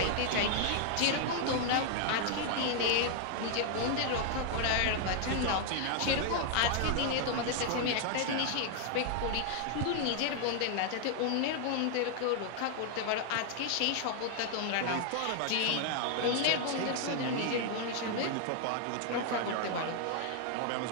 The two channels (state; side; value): different; both; correlation 0.00